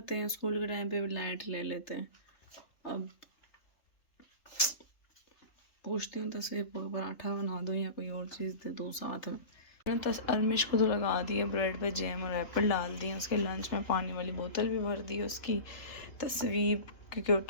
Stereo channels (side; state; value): right; late; 3.4 ms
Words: हैं, स्कूल के टाइम पे भी लाइट ले लेते हैं। अब पूछती हूँ तस्वीर को, पराठा बना दूँ या कोई और चीज़ दे दूँ साथ में। मैंने अरमिश को तो लगा दिया, ब्रेड पे जैम और एप्पल डाल दिए। उसके लंच में पानी वाली बोतल भी भर दी उसकी। तस्वीर क्योंकि वो